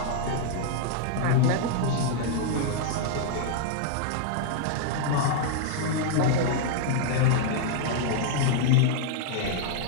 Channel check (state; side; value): different; both; correlation -0.01